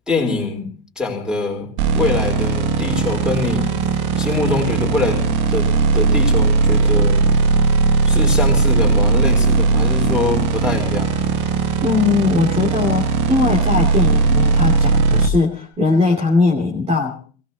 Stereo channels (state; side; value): normal; both; correlation -0.14